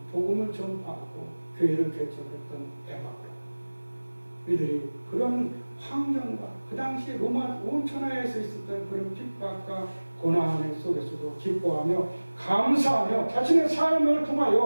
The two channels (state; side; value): inverted; both; correlation -1.00